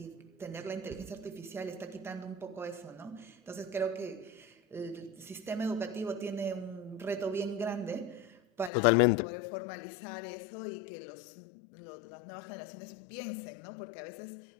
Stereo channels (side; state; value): right; drops out; at 8.7 s